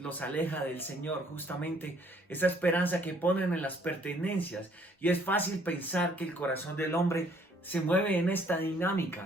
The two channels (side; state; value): both; normal; correlation 0.62